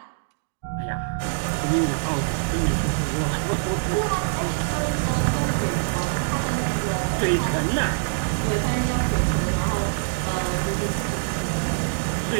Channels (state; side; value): silent; left; digital silence